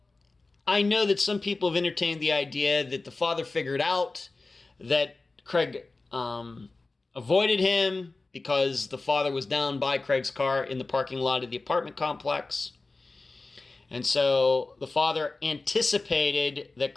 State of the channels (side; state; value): right; quieter; 3.5 dB